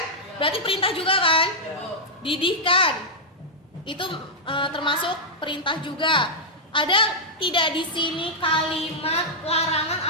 Berarti perintah juga kan? Didihkan. Itu termasuk perintah juga. Ada tidak di sini kalimat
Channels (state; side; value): normal; both; correlation -0.06